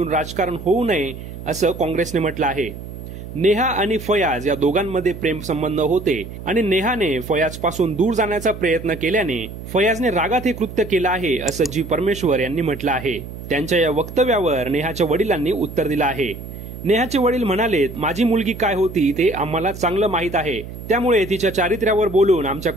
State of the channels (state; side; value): noise; right; hum, 11 dB below the sound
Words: राजकारण होऊ नये असं काँग्रेसने म्हटलं आहे। नेहा आणि फयाज या दोघांमध्ये प्रेम संबंध होते आणि नेहाने फयाज पासून दूर जाण्याचा प्रयत्न केल्याने फयाजने रागात हे कृत्य केलं आहे असं जी परमेश्वर यांनी म्हटलं आहे। त्यांच्या या वक्तव्यावर नेहाच्या वडिलांनी उत्तर दिलं आहे। नेहाचे वडील म्हणाले, माझी मुलगी काय होती ते आम्हाला चांगलं माहीत आहे, त्यामुळे तिच्या चारित्र्यावर बोलून आमच्या